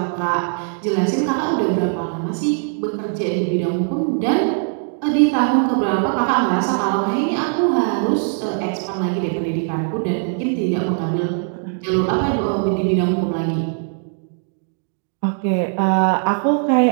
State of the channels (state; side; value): silent; left; 57 dB below the other